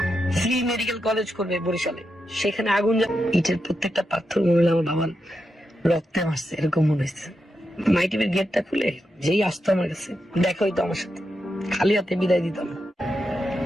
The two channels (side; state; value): both; normal; correlation 0.86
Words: ফ্রি মেডিকেল কলেজ করবে বরিশালে, সেখানে আগুন ইটের প্রত্যেকটা পাথর মনে হলো আমার বাবার রক্তে মারছে, এরকম মনে হচ্ছে। মাইটিভের গেটটা খুলে যেই আসতো আমার কাছে দেখা হইতো আমার সাথে, খালি হাতে বিদায় দিতাম।